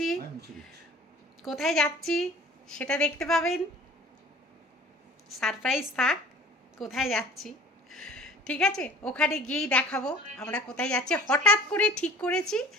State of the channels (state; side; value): normal; both; correlation 0.47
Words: কোথায় যাচ্ছি সেটা দেখতে পাবেন, সারপ্রাইজ থাক কোথায় যাচ্ছি, ঠিক আছে? ওখানে গিয়েই দেখাবো আমরা কোথায় যাচ্ছি। হঠাৎ করে ঠিক করেছি,